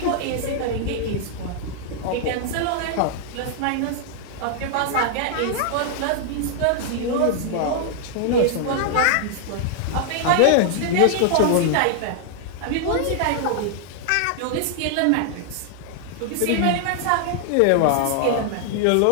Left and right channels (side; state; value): both; different; correlation 0.00